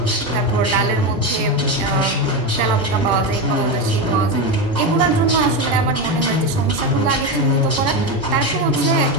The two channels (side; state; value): both; normal; correlation 0.15